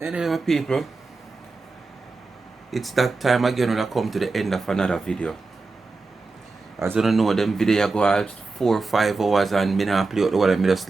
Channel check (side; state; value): left; quieter; 3.8 dB